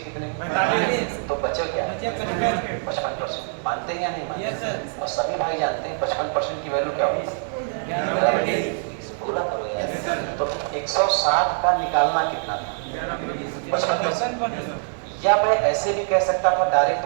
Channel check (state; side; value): silent; left; 60 dB below the other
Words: कितने? तो बचे क्या? 55%। मानते हैं या नहीं मानते? और सभी भाई जानते हैं 55% की वैल्यू क्या होगी? पूरा करो यार। तो 160 का निकालना कितना था? 55%। या मैं ऐसे भी कह सकता था डायरेक्ट